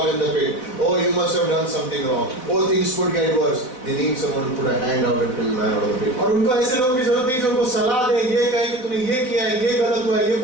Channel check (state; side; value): late; right; 4.0 ms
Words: in the pit. Oh, you must have done something wrong. Oh, things could get worse. They need someone to put a hand out and pull the man out of the pit. और उनको ऐसे लोगों की जरूरत नहीं जो उनको सलाह दे, ये कहे कि तूने ये किया है, ये गलत हुआ है, ये